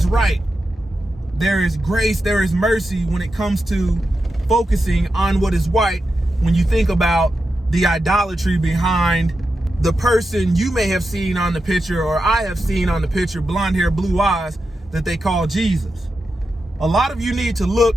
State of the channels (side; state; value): both; normal; correlation 0.89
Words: right. There is grace, there is mercy when it comes to focusing on what is white. When you think about the idolatry behind the person you may have seen on the picture, or I have seen on the picture, blonde hair, blue eyes, that they call Jesus. A lot of you need to look